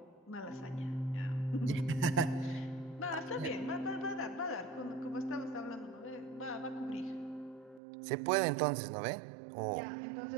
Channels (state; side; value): drops out; left; at 7.8 s